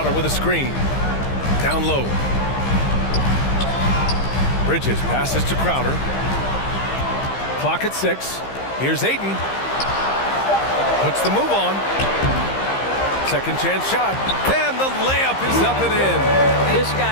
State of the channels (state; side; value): late; right; 15 ms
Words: with a screen. Down low. Bridges passes to Crowder. Clock at 6. Here's Aiden. Puts the move on. Second chance shot. And the layup is up and in. This